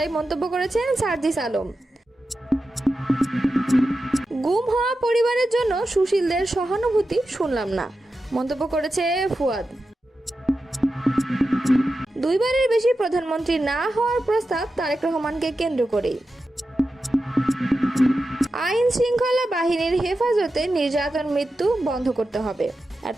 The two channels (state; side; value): normal; both; correlation 0.91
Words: মন্তব্য করেছেন সার্জিস আলম। গুম হওয়া পরিবারের জন্য সুশীলদের সহানুভূতি শুনলাম না, মন্তব্য করেছে ফুয়াদ। দুইবারের বেশি প্রধানমন্ত্রী না হওয়ার প্রস্তাব তারেক রহমানকে কেন্দ্র করেই। আইন শৃঙ্খলা বাহিনীর হেফাজতে নির্যাতন মৃত্যু বন্ধ করতে হবে।